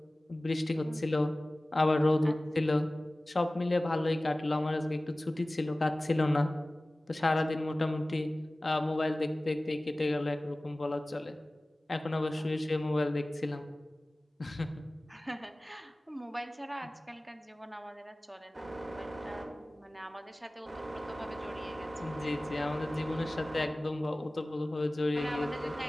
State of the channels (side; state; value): both; normal; correlation 0.98